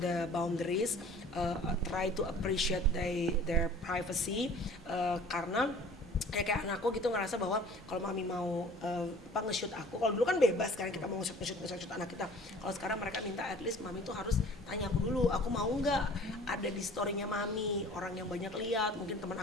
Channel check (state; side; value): normal; both; correlation 0.48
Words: the boundaries, try to appreciate their privacy, karena kayak anakku gitu ngerasa bahwa kalau mami mau nge-shoot aku, kalau dulu kan bebas kan kita mau nge-shoot anak kita. Kalau sekarang mereka minta at least mami tuh harus tanya aku dulu, aku mau nggak ada di storynya mami, orang yang banyak lihat, mungkin teman